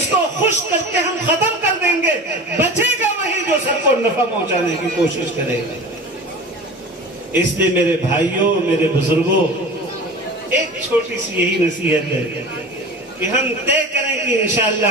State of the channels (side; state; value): both; normal; correlation 0.35